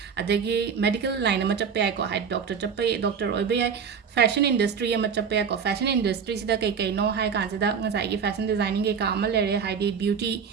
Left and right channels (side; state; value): left; quieter; 6.6 dB